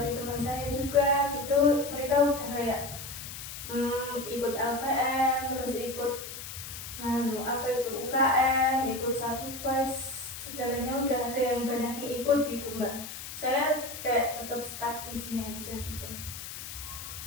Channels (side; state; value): left; noise; hiss, 10 dB below the sound